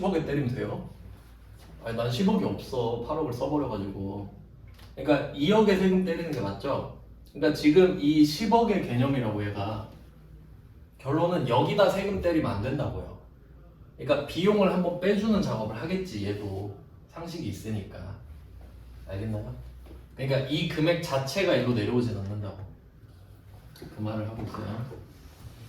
때리면 돼요? 아니 난 10억이 없어. 8억을 써버려가지고. 그러니까 2억에 세금 때리는 게 맞죠? 그러니까 지금 이 10억의 개념이라고 얘가 결론은 여기다 세금 때리면 안 된다고요. 그러니까 비용을 한번 빼주는 작업을 하겠지 얘도 상식이 있으니까. 알겠나요? 그러니까 이 금액 자체가 일로 내려오진 않는다고 그 말을 하고 있어요.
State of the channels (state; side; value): identical; both; correlation 1.00